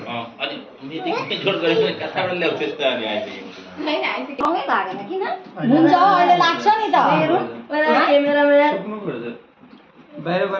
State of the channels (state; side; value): identical; both; correlation 1.00